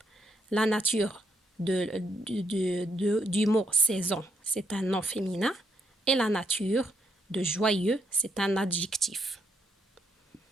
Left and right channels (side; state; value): both; normal; correlation 0.76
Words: La nature du mot saison, c'est un nom féminin. Et la nature de joyeux, c'est un adjectif.